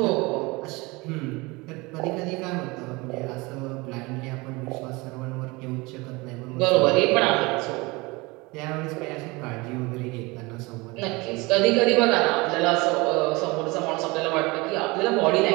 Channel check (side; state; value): left; quieter; 24.2 dB